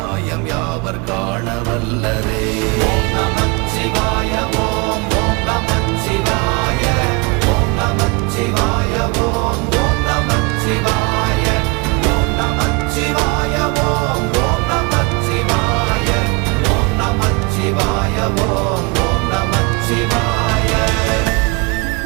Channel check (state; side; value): quieter; left; 27.7 dB